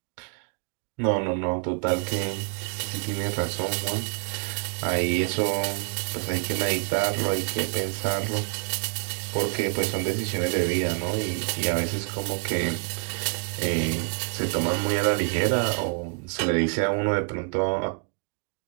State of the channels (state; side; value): quieter; left; 38.9 dB